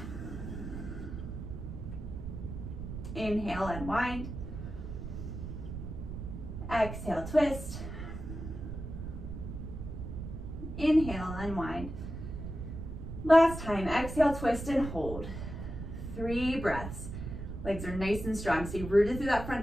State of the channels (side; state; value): right; noise; rumble, 7 dB below the sound